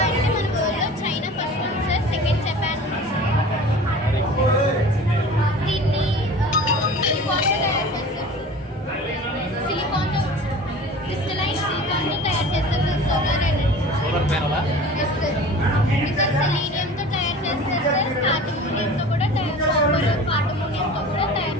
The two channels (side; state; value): both; normal; correlation 0.40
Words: అయితే మన వరల్డ్లో చైనా ఫస్ట్ ఉంది సార్, సెకండ్ జపాన్ ఉంది సార్. దీన్ని సిలికాన్తో తయారు చేస్తారు. సిలికాన్తో క్రిస్టలైన్ సిలికాన్తో తయారు చేస్తారు సార్ సోలార్ ఎనర్జీ. సోలార్ ప్యానలా? Yes sir. ఇంకా సెలీనియంతో తయారు చేస్తారు సార్, కార్టమోనియంతో కూడా కార్టమోనియంతో కూడా తయారు